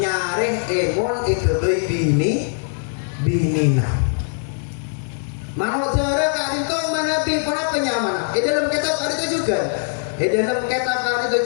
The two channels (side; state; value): right; silent; digital silence